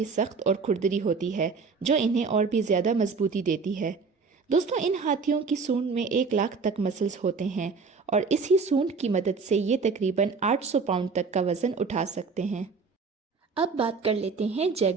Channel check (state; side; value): quieter; left; 4.8 dB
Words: सख्त और खुरदरी होती है, जो इन्हें और भी ज़्यादा मजबूती देती है। दोस्तों, इन हाथियों की सूंड में 1 लाख तक मसल्स होते हैं और इसी सूंड की मदद से ये तकरीबन 800 पाउंड तक का वजन उठा सकते हैं। अब बात कर लेते हैं